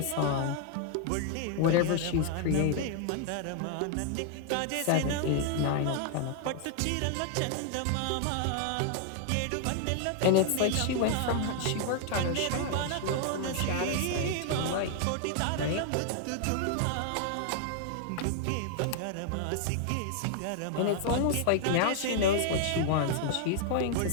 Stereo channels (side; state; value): both; different; correlation 0.00